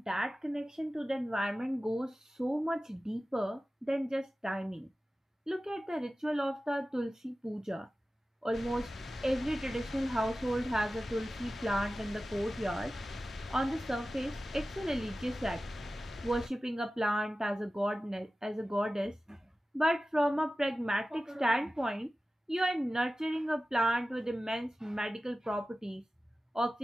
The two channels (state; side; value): normal; both; correlation 0.95